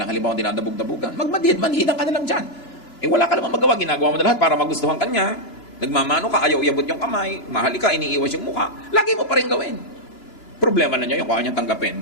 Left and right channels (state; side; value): late; right; 3.0 ms